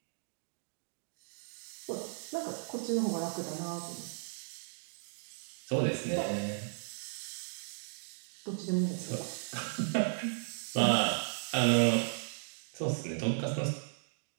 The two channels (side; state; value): left; silent; digital silence